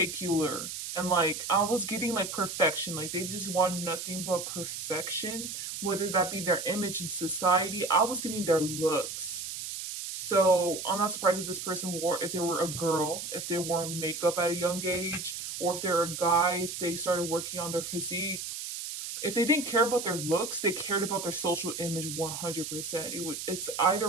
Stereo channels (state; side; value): noise; right; hiss, 6 dB below the sound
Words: and like I was getting like perfection. Like, they just wanted nothing but perfection, whether that be their image in society. I was getting their looks. So I'm not surprised if this person if they were a girl, if they wore makeup at a young age, or if they're a guy, if they started working on their physique. If they didn't care about their looks, they cared about their social image 100%. It's